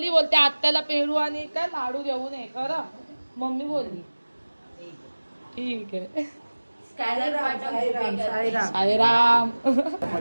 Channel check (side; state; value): both; inverted; correlation -1.00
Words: आत्याला पेरू आणि काय लाडू घेऊन ये. खरं मम्मी बोलली ठीक आहे. साईराम.